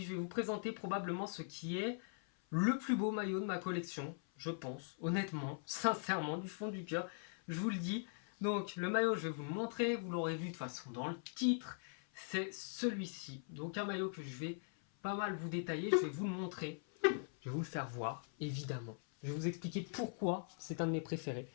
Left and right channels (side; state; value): right; silent; 50 dB below the other